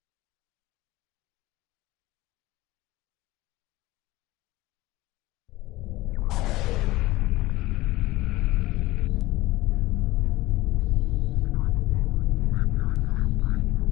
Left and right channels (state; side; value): quieter; right; 18.5 dB